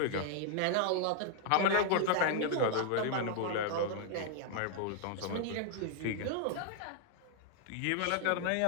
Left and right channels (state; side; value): different; both; correlation 0.00